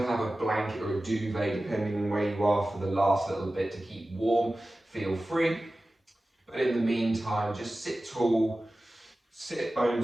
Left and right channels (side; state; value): both; normal; correlation 0.96